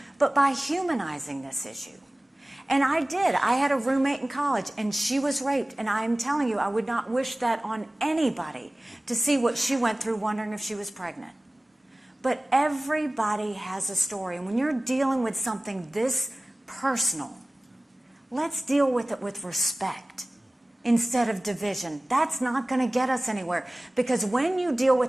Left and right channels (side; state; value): both; normal; correlation 0.97